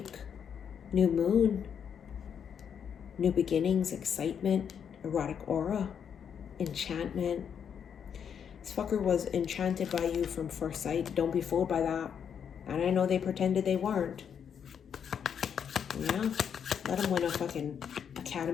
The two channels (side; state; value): right; quieter; 7.8 dB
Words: New moon. New beginnings, excitement, erotic aura, enchantment. This fucker was enchanted by you from first sight. Don't be fooled by that. And I know they pretended they weren't. Yeah, let them win a fucking